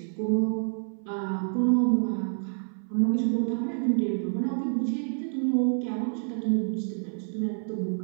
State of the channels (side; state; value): left; silent; 59 dB below the other